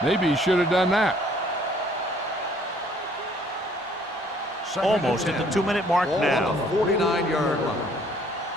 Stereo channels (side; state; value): both; normal; correlation 0.61